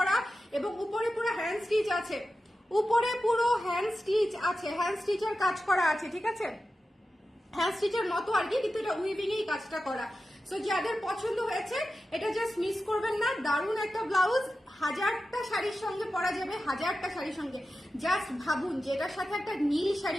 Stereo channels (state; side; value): normal; both; correlation 0.92